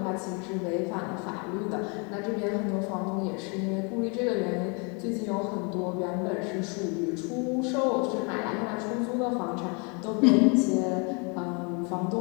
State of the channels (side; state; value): right; quieter; 34.1 dB